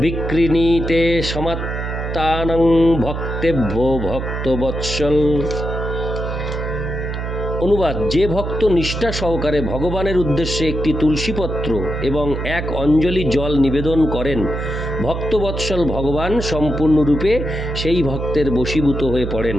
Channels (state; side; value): noise; right; hum, 4 dB below the sound